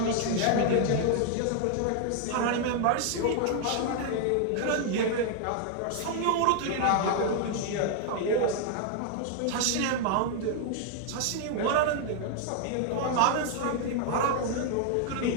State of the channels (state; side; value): different; both; correlation 0.00